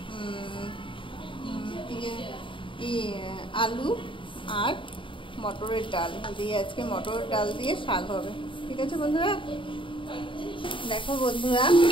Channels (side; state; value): right; late; 0.25 ms